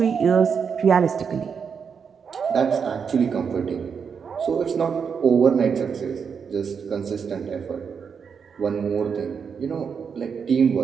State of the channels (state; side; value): quieter; left; 6.4 dB